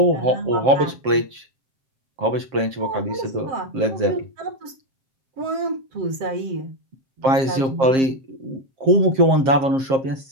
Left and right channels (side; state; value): left; late; 7.5 ms